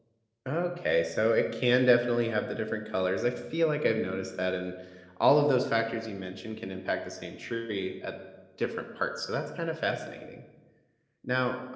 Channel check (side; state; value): both; identical; correlation 1.00